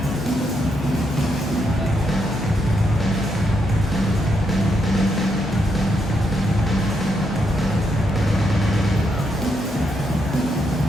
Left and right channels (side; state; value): both; normal; correlation 0.79